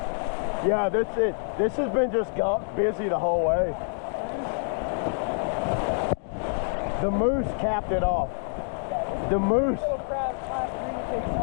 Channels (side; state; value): right; silent; digital silence